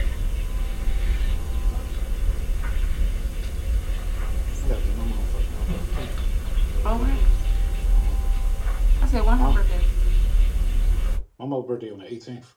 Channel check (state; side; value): identical; both; correlation 1.00